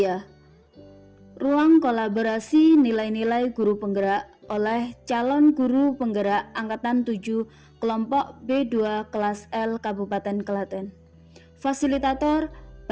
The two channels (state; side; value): identical; both; correlation 1.00